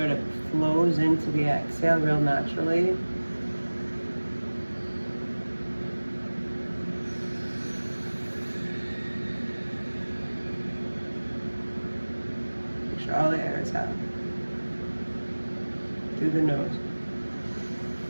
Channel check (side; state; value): both; inverted; correlation -1.00